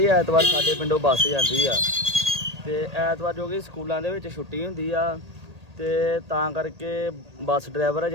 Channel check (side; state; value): left; late; 1.8 ms